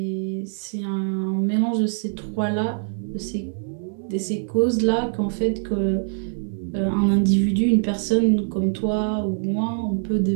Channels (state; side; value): silent; left; 63 dB below the other